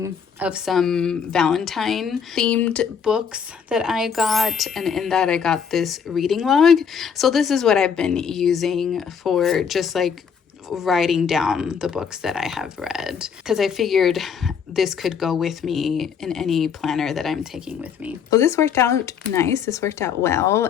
of some Valentine themed books that I got. And in that I got this reading log. So this is what I've been using for just like writing down the books that I have read, because I figured this could go with me in any planner that I'm taking with me. So this worked out nice. This worked out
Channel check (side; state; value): right; quieter; 6.9 dB